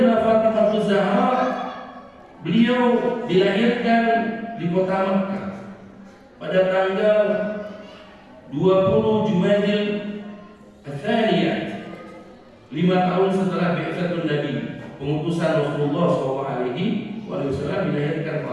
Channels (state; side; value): identical; both; correlation 1.00